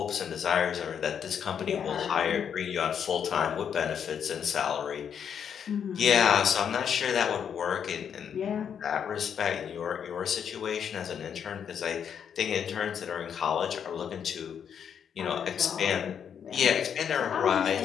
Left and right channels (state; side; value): quieter; right; 7.9 dB